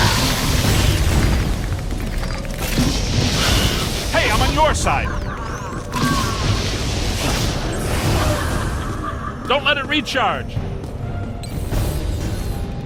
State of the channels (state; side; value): identical; both; correlation 1.00